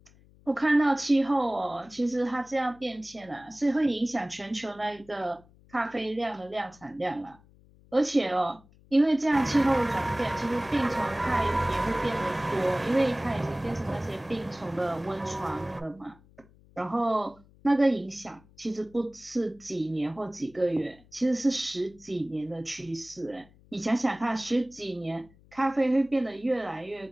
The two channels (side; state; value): left; noise; hum, 27 dB below the sound